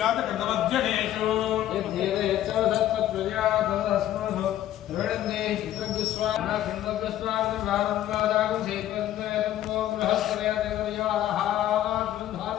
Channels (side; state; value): right; quieter; 12.5 dB